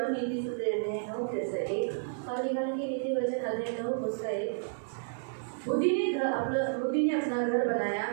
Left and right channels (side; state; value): left; silent; digital silence